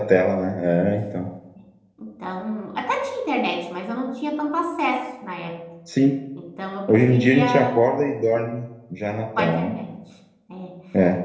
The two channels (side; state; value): both; identical; correlation 1.00